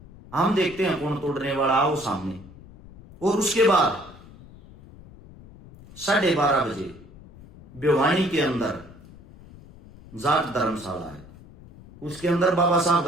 हम देखते हैं कौन तोड़ने वाला, आओ सामने। और उसके बाद 12:30 बजे भिवानी के अंदर जाट धर्मशाला है, उसके अंदर बाबा साहब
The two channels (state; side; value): noise; left; rumble, 20 dB below the sound